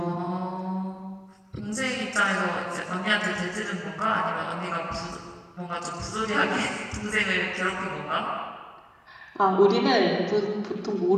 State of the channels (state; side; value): identical; both; correlation 1.00